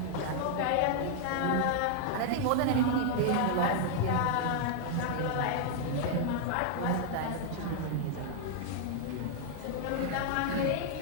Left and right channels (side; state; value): both; different; correlation -0.01